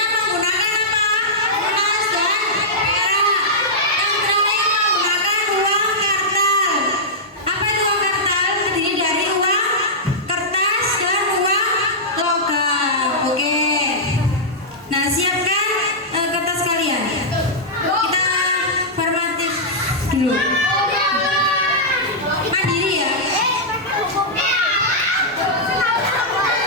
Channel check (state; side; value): normal; both; correlation -0.10